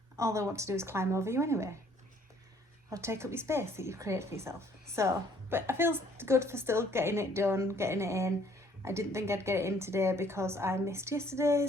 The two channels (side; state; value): both; normal; correlation 0.61